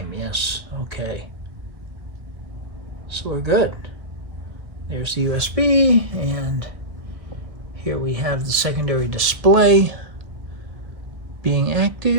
yes, okay. So we're good. There's the USB, and here we have the secondary display being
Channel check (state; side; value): late; left; 1.3 ms